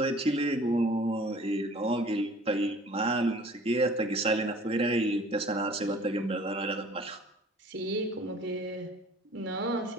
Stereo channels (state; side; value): normal; both; correlation 0.50